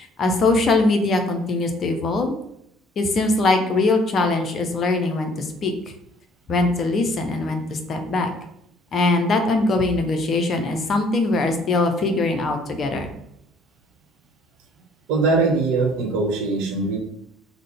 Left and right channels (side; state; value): both; normal; correlation 0.58